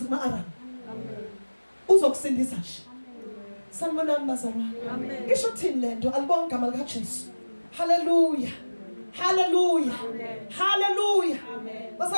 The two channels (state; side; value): inverted; both; correlation -1.00